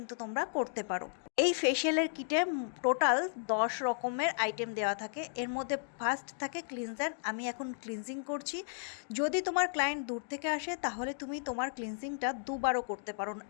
তোমরা করতে পারো। এই ফেসিয়ালের কিটে টোটাল 10 রকমের আইটেম দেওয়া থাকে। এর মধ্যে ফার্স্ট থাকে ক্লিনজার। আমি এখন ক্লিনজিং করছি। যদি তোমার ক্লায়েন্ট দূর থেকে আসে তাহলে তুমি তোমার ক্লিনজিংটা দুবারও করতে পারো।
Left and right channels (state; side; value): silent; right; digital silence